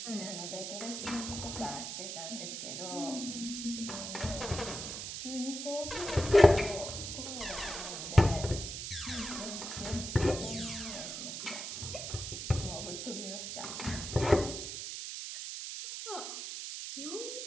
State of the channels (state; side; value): noise; right; hiss, 6 dB below the sound